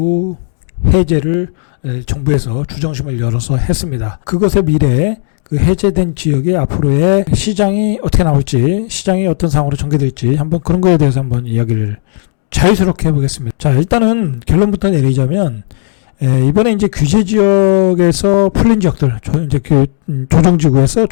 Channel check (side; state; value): right; silent; 72 dB below the other